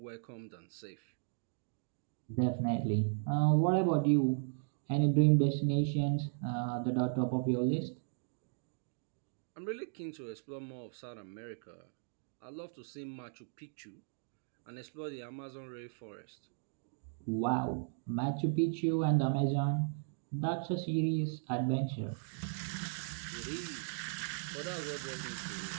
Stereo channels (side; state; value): left; silent; digital silence